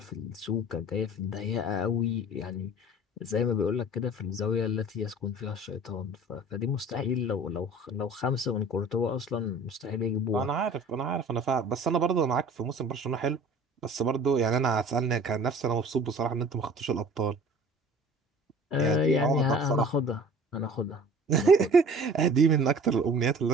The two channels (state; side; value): normal; both; correlation 0.45